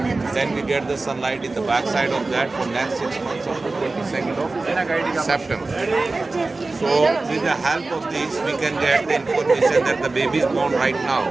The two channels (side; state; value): left; quieter; 3.4 dB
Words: Then we get the sunlight in the backside of that for next 6 months of the 22nd of September. So with the help of this, we can get the information that the baby is born right now.